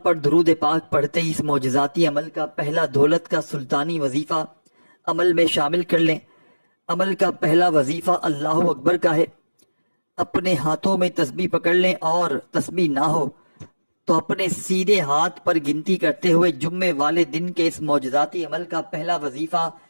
درود پاک پڑھتے ہی اس معجزاتی عمل کا پہلا دولت کا سلطانی وظیفہ عمل میں شامل کر لیں۔ عمل کا پہلا وظیفہ اللہ اکبر کا ہے۔ اپنے ہاتھوں میں تسبیح پکڑ لیں، اور تسبیح نہ ہو تو اپنے سیدھے ہاتھ پر گنتی کرتے ہوئے جمعے والے دن کے اس معجزاتی عمل کا پہلا وظیفہ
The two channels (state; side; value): inverted; both; correlation -1.00